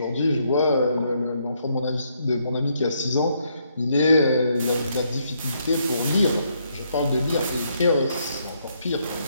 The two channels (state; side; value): inverted; both; correlation -0.74